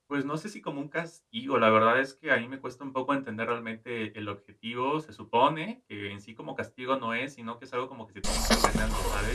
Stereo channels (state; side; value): identical; both; correlation 1.00